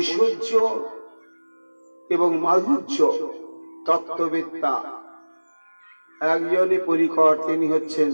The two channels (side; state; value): both; inverted; correlation -1.00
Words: এবং মাধুর্য তত্ত্ববেত্তা একজনই পরিকর, তিনি হচ্ছেন